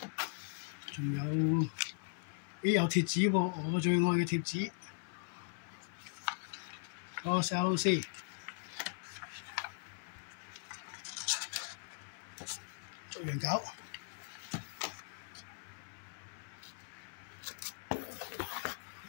仲有貼紙喎，我最愛嘅貼紙。個 CLC 逐樣搞。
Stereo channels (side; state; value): right; silent; 52 dB below the other